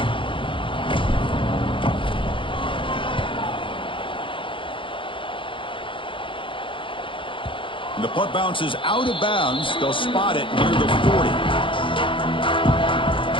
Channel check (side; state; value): right; late; 0.25 ms